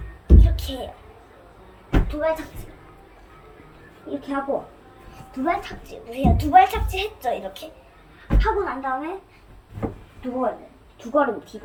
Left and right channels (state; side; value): identical; both; correlation 1.00